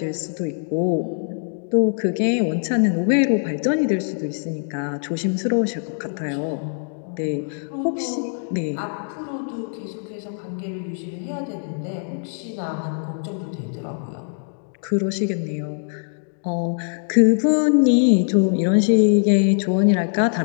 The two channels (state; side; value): silent; right; digital silence